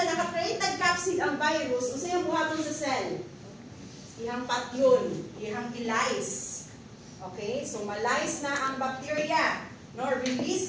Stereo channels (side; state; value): both; identical; correlation 1.00